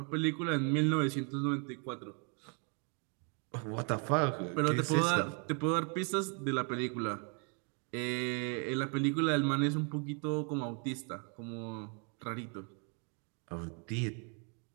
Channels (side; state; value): left; quieter; 37.4 dB